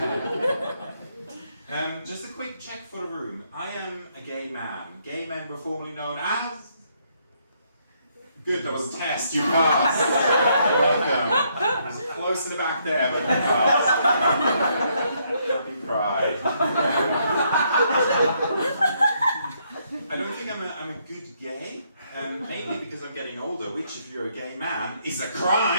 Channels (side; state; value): both; inverted; correlation -0.72